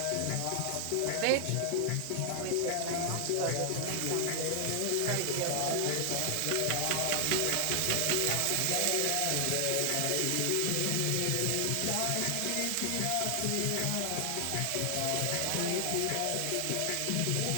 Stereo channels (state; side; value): different; both; correlation 0.00